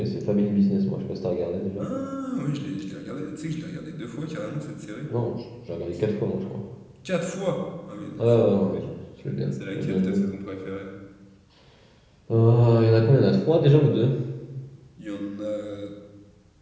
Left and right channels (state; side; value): identical; both; correlation 1.00